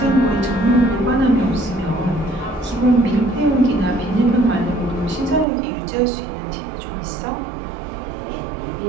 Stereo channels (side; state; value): left; drops out; at 5.5 s